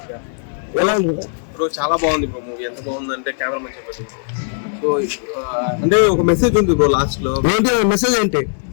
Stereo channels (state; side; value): silent; right; 60 dB below the other